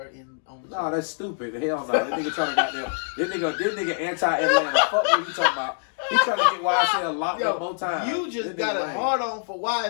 on the show. No, that's stupid. Hell no. That nigga trying to goddamn. This nigga anti-Atlanta. Fuck what you talking about. He trying to get YSL locked up more times. You just This got nigga a lame. hard on for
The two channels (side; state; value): right; silent; 62 dB below the other